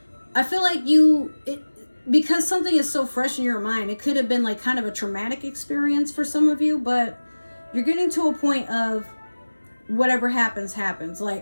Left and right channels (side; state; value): both; inverted; correlation -1.00